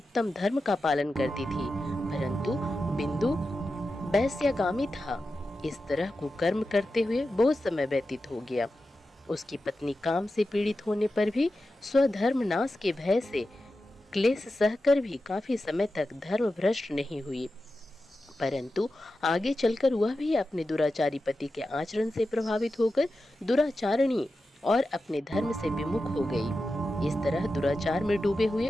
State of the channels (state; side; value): normal; both; correlation 0.91